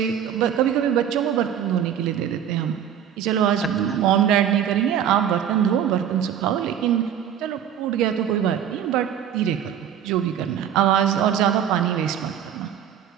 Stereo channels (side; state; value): left; quieter; 9.3 dB